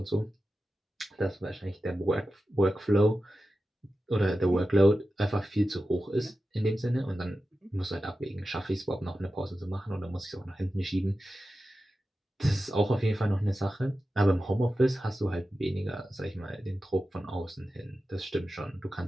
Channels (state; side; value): normal; both; correlation 0.93